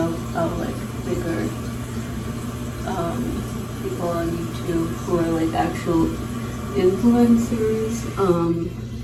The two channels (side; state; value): both; identical; correlation 1.00